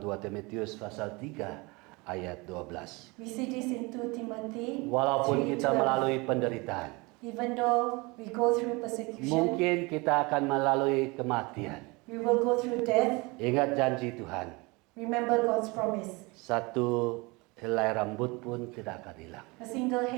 Timotius pasal 3 ayat 12. We see this in 2 Timothy. Walaupun 3:12. kita melalui penderitaan, Even though we go through persecution, mungkin kita akan melalui kematian. we will go through death. Ingat janji Tuhan, Remember God's promise. satu helai rambut pun tidak akan hilang. A single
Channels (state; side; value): quieter; left; 25.9 dB